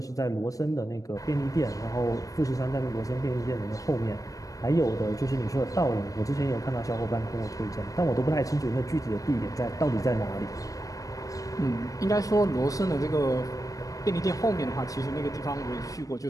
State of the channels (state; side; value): late; right; 0.16 ms